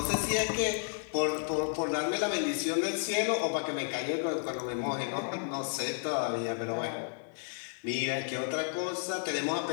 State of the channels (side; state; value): right; silent; digital silence